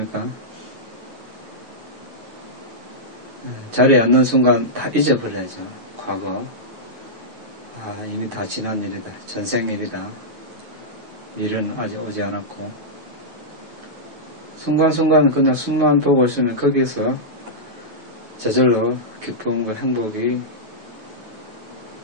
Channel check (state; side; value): late; left; 9.2 ms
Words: 자리에 앉는 순간 다 잊어버려야죠. 과거. 이미 다 지난 일이다. 전생 일이다. 일은 아직 오지 않았고. 순간순간 그냥 숨만 보고 있으면 거기서 저절로 기쁨과 행복이